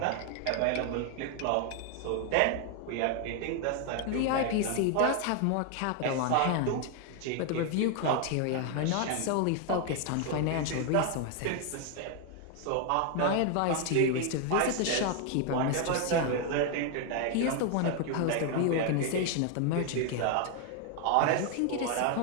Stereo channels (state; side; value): different; both; correlation 0.00